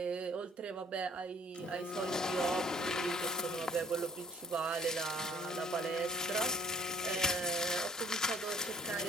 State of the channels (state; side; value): normal; both; correlation 0.58